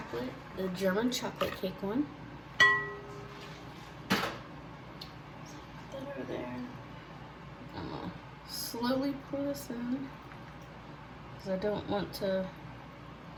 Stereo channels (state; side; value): identical; both; correlation 1.00